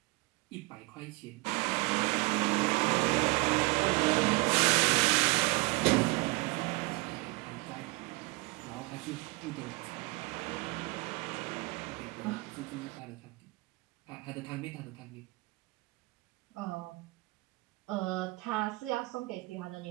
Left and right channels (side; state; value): left; quieter; 25.3 dB